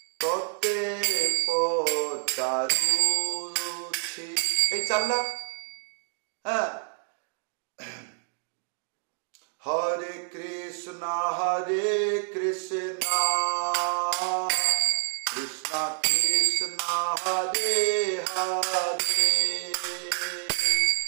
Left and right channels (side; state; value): left; silent; 58 dB below the other